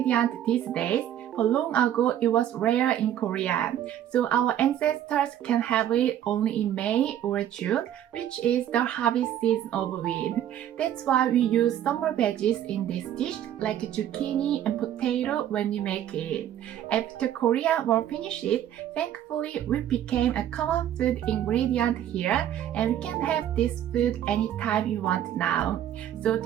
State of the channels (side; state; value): left; quieter; 11.1 dB